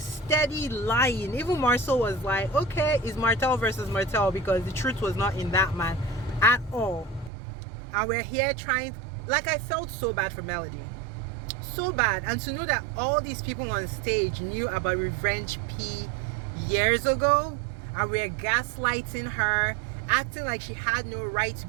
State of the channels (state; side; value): drops out; left; at 7.3 s